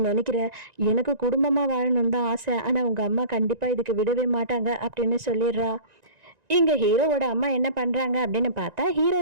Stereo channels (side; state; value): left; late; 1.9 ms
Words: நினைக்கிற? எனக்கு குடும்பமா வாழணும்னு தான் ஆசை. ஆனா உங்க அம்மா கண்டிப்பா இதுக்கு விடவே மாட்டாங்க அப்படின்னு சொல்லிடுறா. இங்க ஹீரோவோட அம்மா என்ன பண்றாங்க அப்படின்னு பார்த்தா,